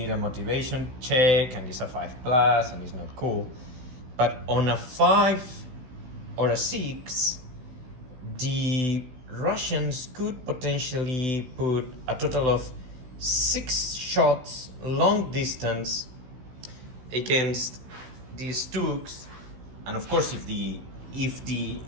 a motivation check and it's a 5+ and it's not cool, but on a 5 or a 6, the Russians could potentially put a total of 6 shots long distance against the Stugs, and of course if the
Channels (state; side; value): late; left; 16 ms